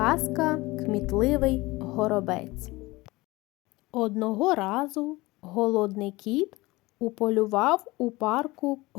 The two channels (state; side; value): quieter; right; 21.2 dB